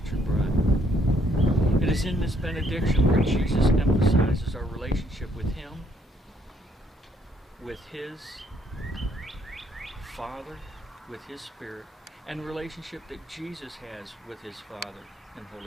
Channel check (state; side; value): normal; both; correlation 0.69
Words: bride. It is in this benediction where Jesus emphasizes our relationship with him, with his Father, with his Spirit, and the relationship that Jesus has with his Father and